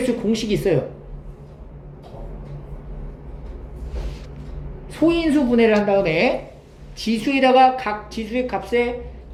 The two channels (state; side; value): identical; both; correlation 1.00